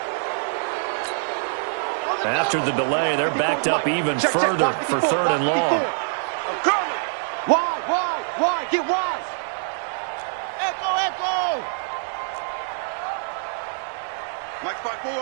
After the delay, they're backed up even further for 3rd and long. Wide. Get wide. Echo. Mike's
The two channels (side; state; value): left; silent; 62 dB below the other